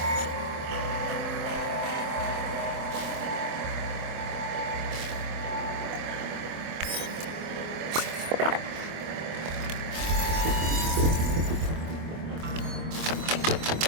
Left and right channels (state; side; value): late; left; 25 ms